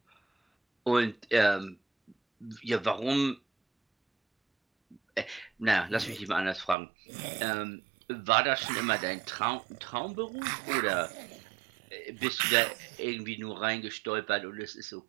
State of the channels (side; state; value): left; drops out; at 6.8 s